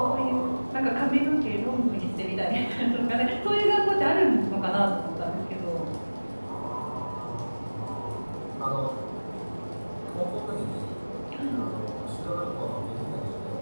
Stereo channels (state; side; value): inverted; both; correlation -1.00